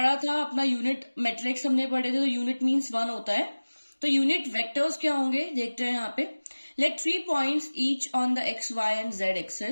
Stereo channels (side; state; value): both; inverted; correlation -1.00